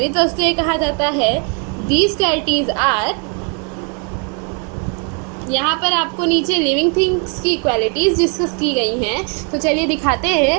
वस्तुएं कहा जाता है। दीज क्वालिटीज़ आर, यहाँ पर आपको नीचे लिविंग थिंग्स की क्वालिटीज़ डिस्कस की गई हैं। तो चलिए दिखाते हैं।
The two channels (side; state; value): left; quieter; 37.3 dB